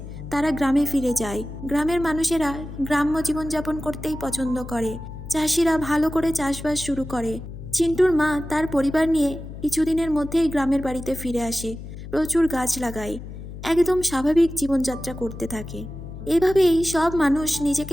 তারা গ্রামে ফিরে যায়। গ্রামের মানুষেরা গ্রাম্য জীবনযাপন করতেই পছন্দ করে। চাষিরা ভালো করে চাষবাস শুরু করে। চিন্টুর মা তার পরিবার নিয়ে কিছুদিনের মধ্যেই গ্রামের বাড়িতে ফিরে আসে। প্রচুর গাছ লাগায়, একদম স্বাভাবিক জীবনযাত্রা করতে থাকে। এভাবেই সব মানুষ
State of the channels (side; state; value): left; noise; hum, 11 dB below the sound